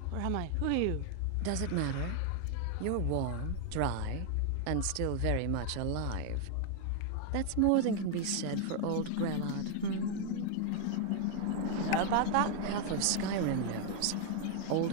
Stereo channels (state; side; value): different; both; correlation 0.00